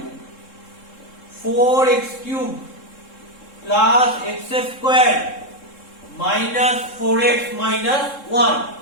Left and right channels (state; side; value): late; right; 3.7 ms